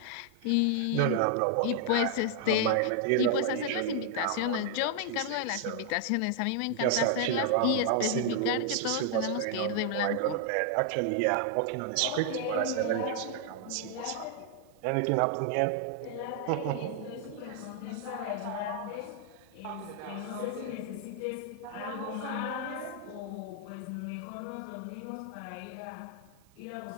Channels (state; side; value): different; both; correlation 0.00